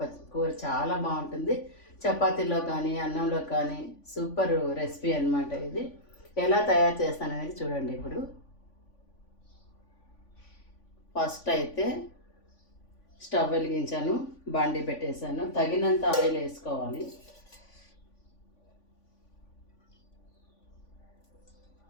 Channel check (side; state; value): right; late; 3.5 ms